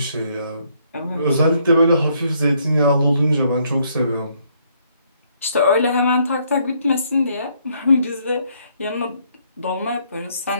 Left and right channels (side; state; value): both; inverted; correlation -0.70